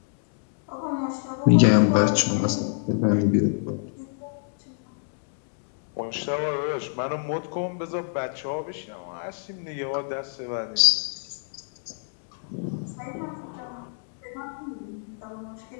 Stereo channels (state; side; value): silent; right; digital silence